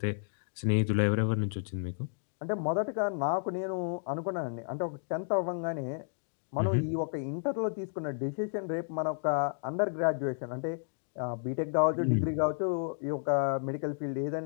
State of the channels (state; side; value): silent; right; digital silence